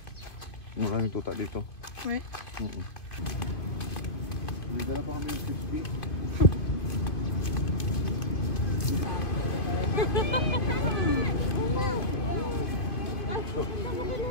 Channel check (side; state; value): right; late; 2.5 ms